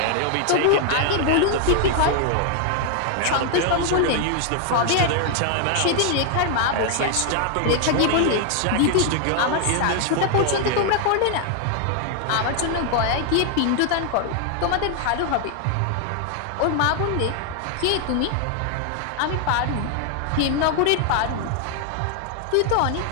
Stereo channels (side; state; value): both; different; correlation 0.00